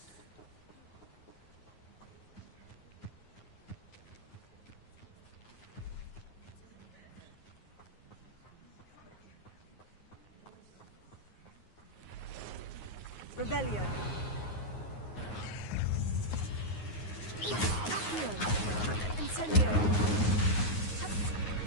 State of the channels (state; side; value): late; right; 9.5 ms